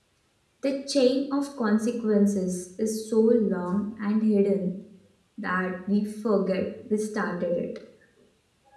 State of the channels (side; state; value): both; identical; correlation 1.00